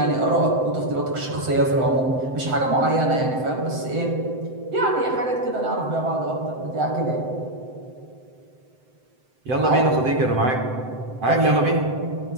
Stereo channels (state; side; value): late; left; 7.8 ms